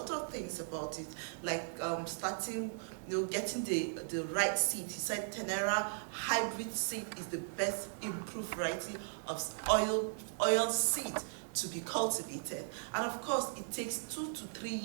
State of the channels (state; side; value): silent; left; digital silence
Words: of things about it, like starting, getting the right seed. He said Tenera hybrid seed is the best improved variety of oil seed to be cultivated, and of course it takes 2 to 3